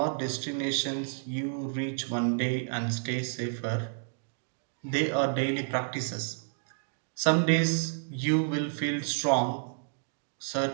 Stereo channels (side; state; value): left; silent; digital silence